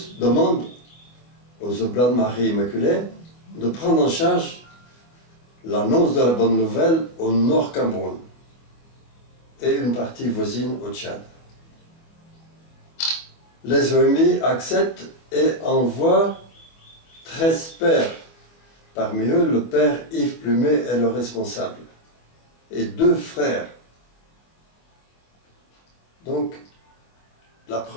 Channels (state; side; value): late; right; 25 ms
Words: demande aux Oblats de Marie Immaculée de prendre en charge l'annonce de la bonne nouvelle au Nord Cameroun et une partie voisine au Tchad. Les OMI acceptent et envoient 13 pères. Parmi eux, le père Yves Plumet est le responsable et 2 frères. Donc, la